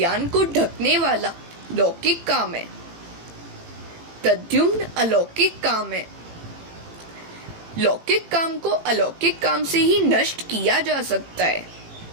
को ढकने वाला लौकिक काम है, प्रद्युम्न अलौकिक काम है। लौकिक काम को अलौकिक काम से ही नष्ट किया जा सकता है।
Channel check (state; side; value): late; left; 18 ms